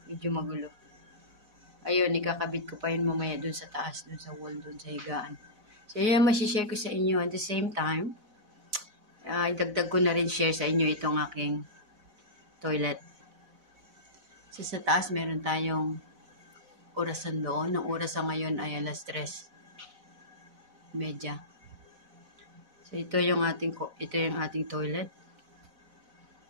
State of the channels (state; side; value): late; left; 4.0 ms